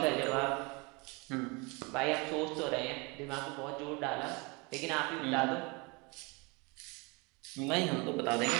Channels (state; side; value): quieter; left; 28.3 dB